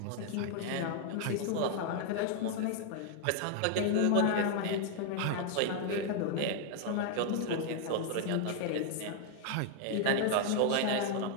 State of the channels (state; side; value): different; both; correlation 0.00